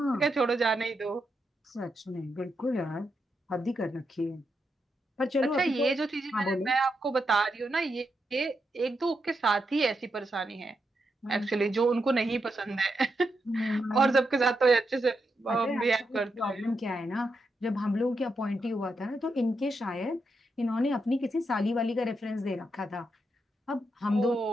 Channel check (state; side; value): normal; both; correlation 0.84